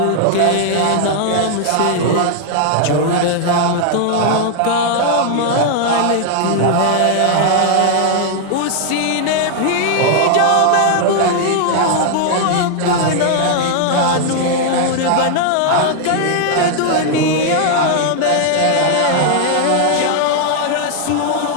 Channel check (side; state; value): both; different; correlation 0.00